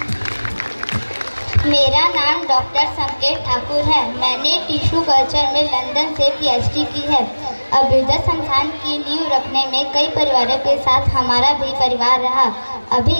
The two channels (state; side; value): inverted; both; correlation -1.00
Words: मेरा नाम डॉक्टर संकेत ठाकुर है। मैंने टिश्यू कल्चर में लंदन से पीएचडी की है। अभ्युदय संस्थान की नींव रखने में कई परिवारों के साथ हमारा भी परिवार रहा। अभी